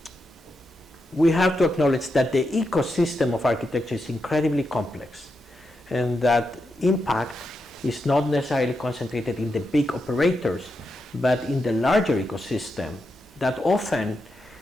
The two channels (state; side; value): normal; both; correlation 0.86